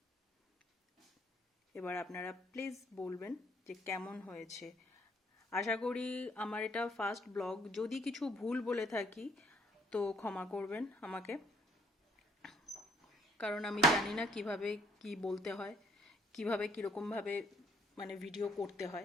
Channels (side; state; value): both; normal; correlation 0.66